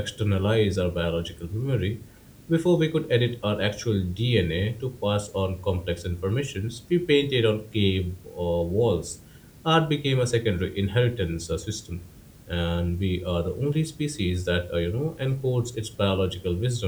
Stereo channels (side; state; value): both; identical; correlation 1.00